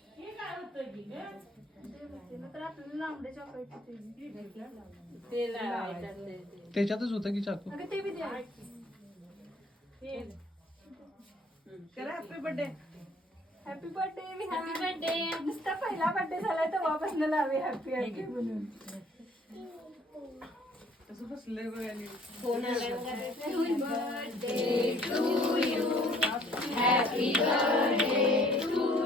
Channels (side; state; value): both; normal; correlation 0.58